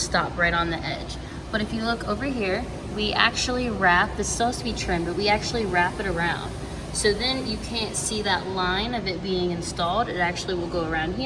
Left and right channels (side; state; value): both; identical; correlation 1.00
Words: right on the edge. But if you look over here, we actually wrap, this is supposed to be trimmed, but we actually wrap it around. So then you can't see that line of it being installed. It actually will go around